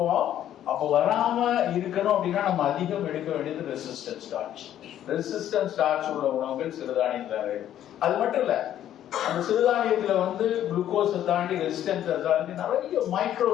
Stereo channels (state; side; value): quieter; right; 11.4 dB